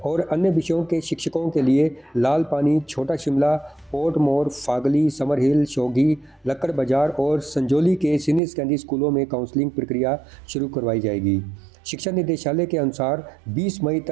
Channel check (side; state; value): left; drops out; at 8.4 s